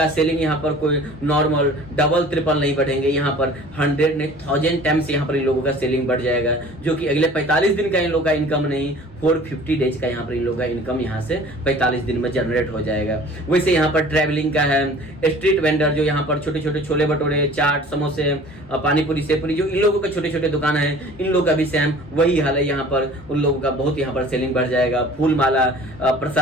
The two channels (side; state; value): both; normal; correlation 0.47